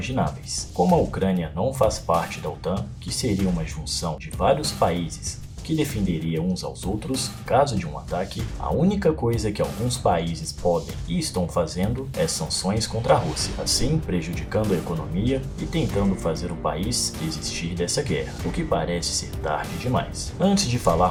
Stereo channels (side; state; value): both; identical; correlation 1.00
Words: Como a Ucrânia não faz parte da OTAN, que seria uma junção de vários países que defenderia uns aos outros caso de um ataque, a única coisa que alguns países podem e estão fazendo é sanções contra a Rússia, assim prejudicando a economia e tentando fazer o país desistir dessa guerra, o que parece ser tarde demais. Antes de